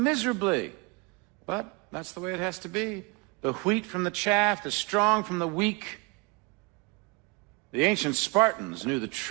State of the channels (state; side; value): quieter; left; 28.3 dB